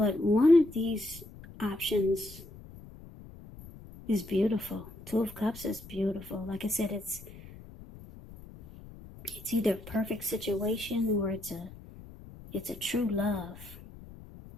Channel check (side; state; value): left; noise; rumble, 17 dB below the sound